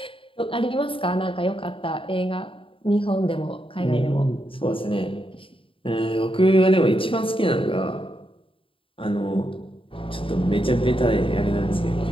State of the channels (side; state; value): right; late; 0.26 ms